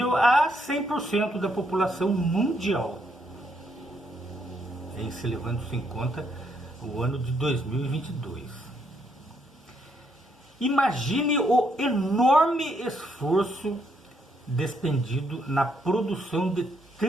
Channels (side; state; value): both; normal; correlation 0.74